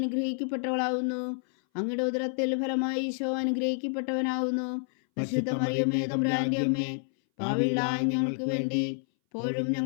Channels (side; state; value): right; silent; 59 dB below the other